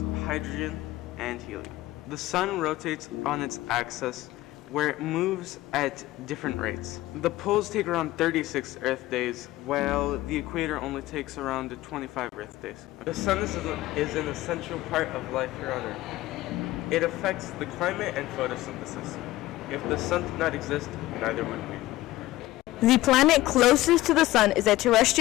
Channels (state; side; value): quieter; right; 16.9 dB